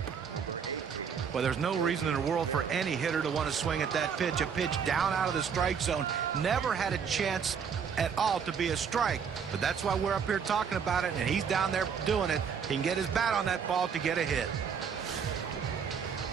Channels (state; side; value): quieter; left; 6.9 dB